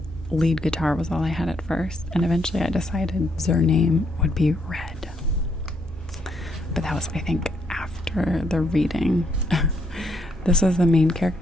lead guitar was all I had at first, and eventually I decided their name would be Red. But that was, I think, after the reading. This was the main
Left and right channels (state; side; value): normal; both; correlation 0.74